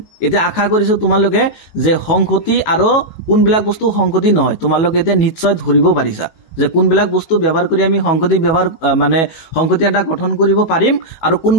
এতিয়া আশা কৰিছো তোমালোকে যে সংহতি আৰু কোনবিলাক বস্তু সংহতি নহয় তোমালোকে এতিয়া নিশ্চয় ধৰিব পাৰিছা যে কোনবিলাক বস্তু ব্যৱহাৰ কৰি আমি সংহতি ব্যৱহাৰ মানে সংহতি এটা গঠন কৰিব পাৰিম আৰু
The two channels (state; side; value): late; right; 18 ms